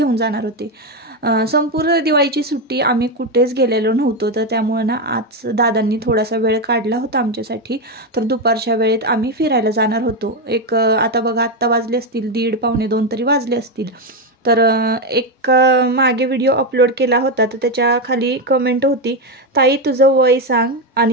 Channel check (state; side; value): normal; both; correlation 0.09